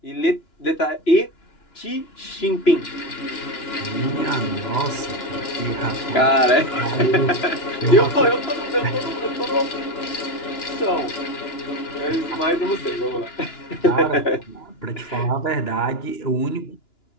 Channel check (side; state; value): right; late; 2.9 ms